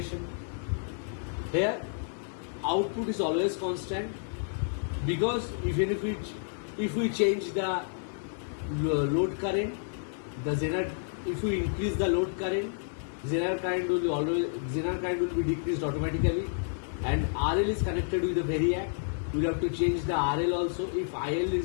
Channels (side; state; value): right; silent; digital silence